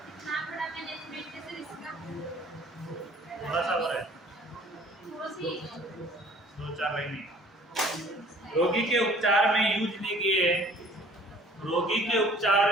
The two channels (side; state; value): both; normal; correlation 0.53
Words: थोड़ा सा और है, 2-4 लाइनें। रोगी के उपचार में यूज लिए